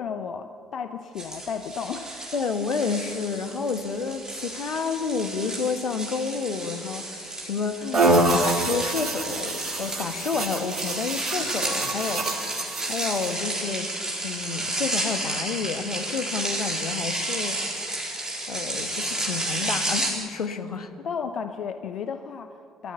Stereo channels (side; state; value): both; normal; correlation 0.43